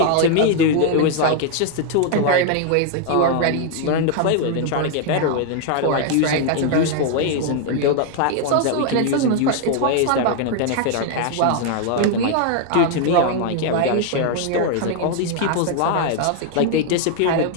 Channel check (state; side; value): different; both; correlation 0.00